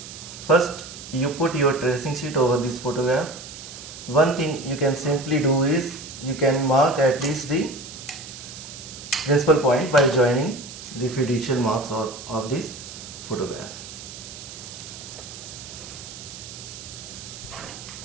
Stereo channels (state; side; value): noise; right; hiss, 13 dB below the sound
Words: first you put your tracing sheet over this photograph. One thing you can simply do is you can mark at least the principal point by joining the fiducial marks of this photograph.